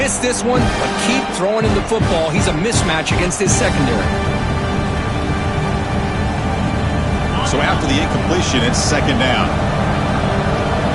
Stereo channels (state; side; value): identical; both; correlation 1.00